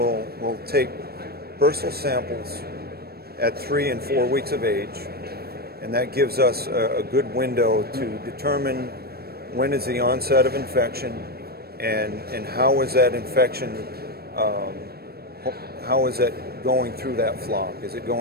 take bursal samples at 3 and 4 weeks of age, and that gives us a good window to determine when is the onset of infection and how is that infection, how is it going through that flock? Is it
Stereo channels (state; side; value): late; left; 0.46 ms